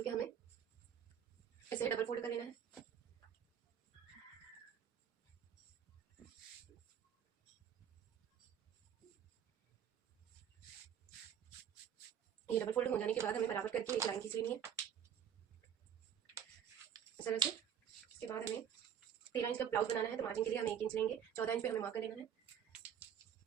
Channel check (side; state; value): left; quieter; 8.8 dB